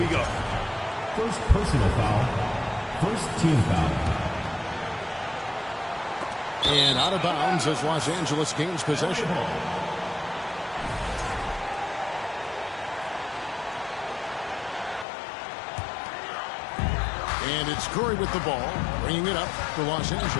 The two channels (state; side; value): drops out; right; at 15.1 s